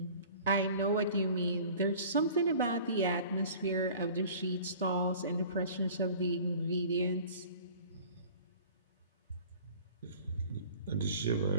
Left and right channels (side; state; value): both; inverted; correlation -0.46